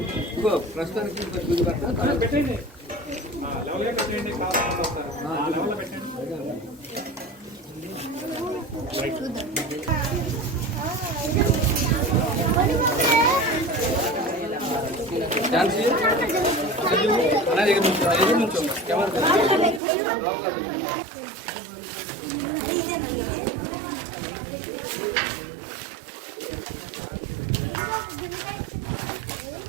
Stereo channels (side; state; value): left; drops out; at 19.8 s